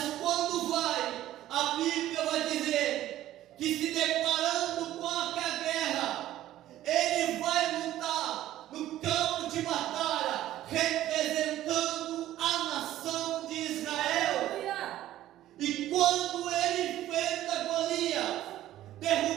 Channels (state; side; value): quieter; left; 13.7 dB